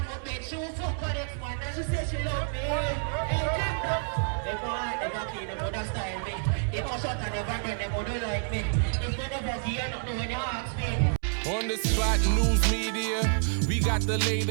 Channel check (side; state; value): left; silent; 59 dB below the other